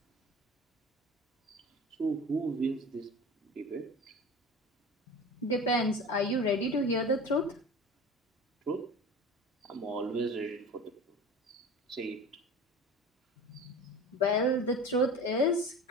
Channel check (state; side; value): normal; both; correlation 0.35